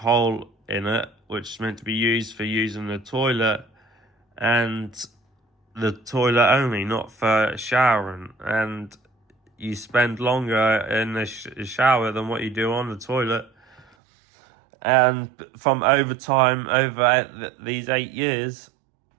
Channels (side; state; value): left; drops out; at 13.9 s